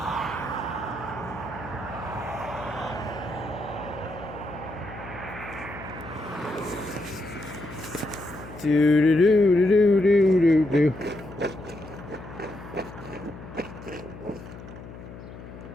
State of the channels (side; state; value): left; noise; hum, 14 dB below the sound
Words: Do do do do do do do.